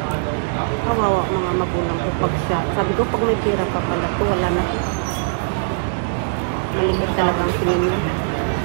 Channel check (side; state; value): left; silent; digital silence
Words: kawawa mga magulang ko pag siya. Sabi ko, pag may pera pa pala to, wala na to. Malimit talaga ang tingin niya.